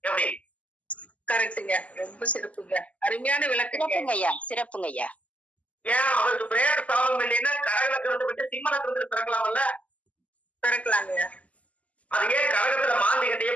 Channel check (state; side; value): late; right; 0.068 ms